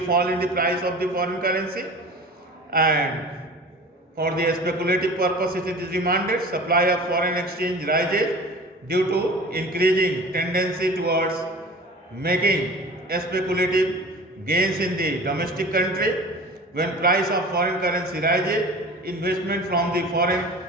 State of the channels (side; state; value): both; normal; correlation 0.39